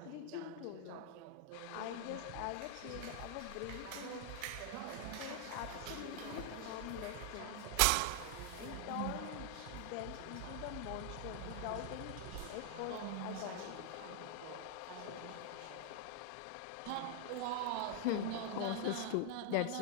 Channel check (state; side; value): different; both; correlation 0.00